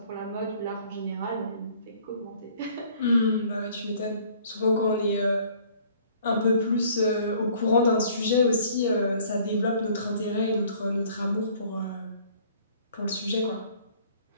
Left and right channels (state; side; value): inverted; both; correlation -0.56